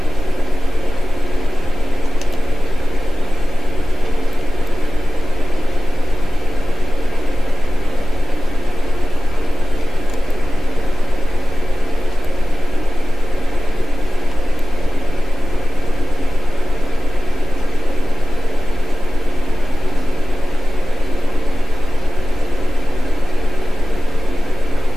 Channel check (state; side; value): normal; both; correlation 0.96